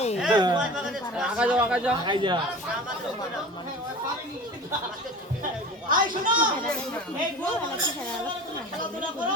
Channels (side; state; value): both; normal; correlation 0.37